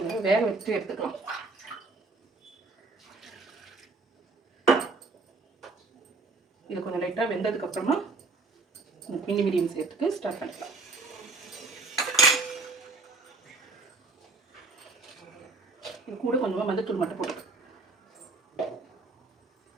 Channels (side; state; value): left; quieter; 3.7 dB